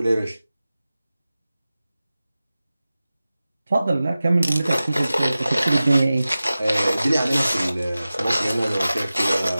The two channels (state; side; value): inverted; both; correlation -0.96